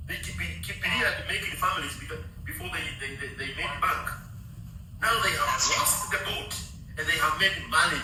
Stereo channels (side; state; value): both; identical; correlation 1.00